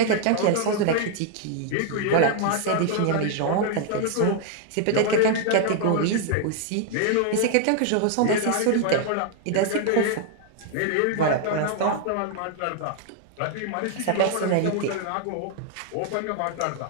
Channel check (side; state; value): both; different; correlation 0.00